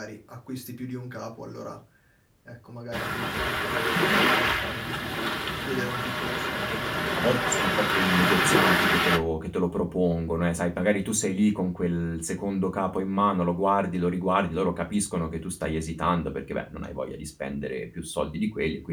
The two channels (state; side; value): identical; both; correlation 1.00